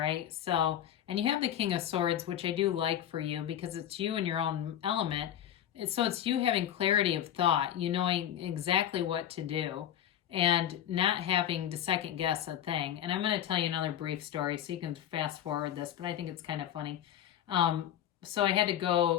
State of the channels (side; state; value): right; quieter; 10.8 dB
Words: So, and you have the King of Swords, which I do like for you, because it's you in your own element. So it's you having clarity of thought, you knowing exactly what to do, and not having to second guess a thing. And I'm going to tell you another brief story, so you can fast forward this, but I think it's kind of funny. So I had to